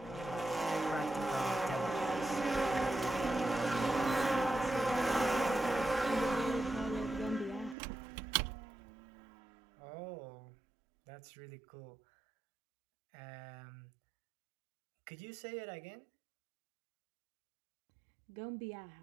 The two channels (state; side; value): drops out; left; at 7.8 s